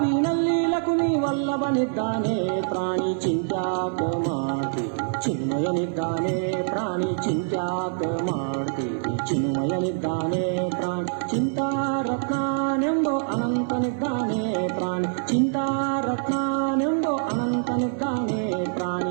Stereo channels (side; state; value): left; silent; digital silence